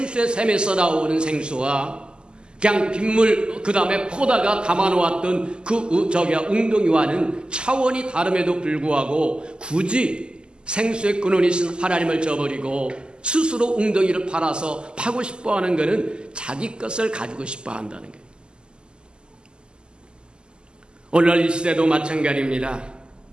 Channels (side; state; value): left; late; 0.048 ms